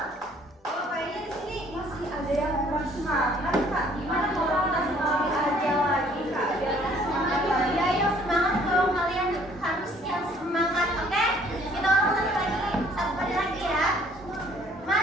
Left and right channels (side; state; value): both; normal; correlation 0.59